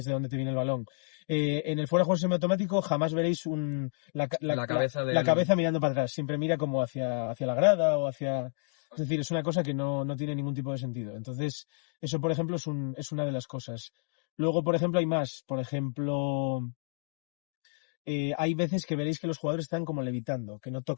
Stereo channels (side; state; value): right; silent; digital silence